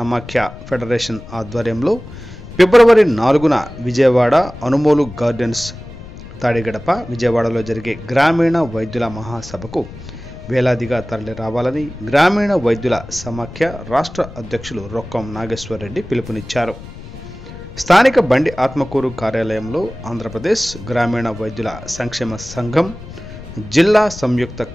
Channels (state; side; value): noise; left; rumble, 15 dB below the sound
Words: ఫెడరేషన్ ఆధ్వర్యంలో ఫిబ్రవరి 4న విజయవాడ అనుమోలు గార్డెన్స్ తాడిగడప విజయవాడలో జరిగే గ్రామీణ వైద్యుల మహాసభకు వేలాదిగా తరలి రావాలని గ్రామీణ వైద్యుల సమాఖ్య రాష్ట్ర అధ్యక్షులు రొక్కం నాగేశ్వర్ రెడ్డి పిలుపునిచ్చారు. స్థానిక బండి ఆత్మకూరు కార్యాలయంలో ఆంధ్రప్రదేశ్ గ్రామీణ వైద్యుల సంక్షేమ సంఘం జిల్లా సంయుక్త